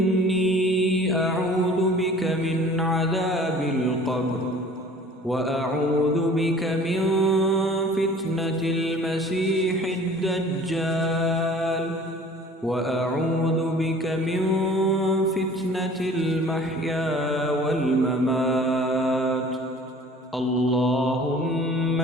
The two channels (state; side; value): normal; both; correlation 0.48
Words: أعوذ بك من عذاب القبر، وأعوذ بك من فتنة المسيح الدجال، وأعوذ بك من فتنة المحيا والممات. اللهم